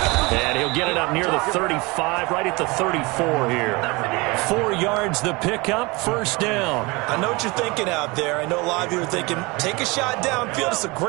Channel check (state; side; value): quieter; left; 25.1 dB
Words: And he'll get it up near the 35, right at the 34 here. 4 yards the pickup, first down. I know what you're thinking out there. I know a lot of you are thinking, take a shot downfield. It's a